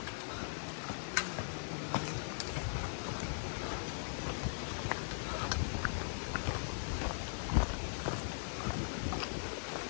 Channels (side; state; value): right; silent; digital silence